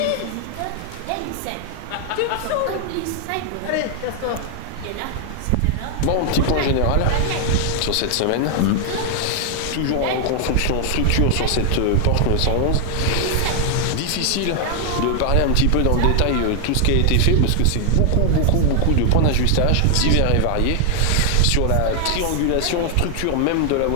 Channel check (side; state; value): both; different; correlation 0.00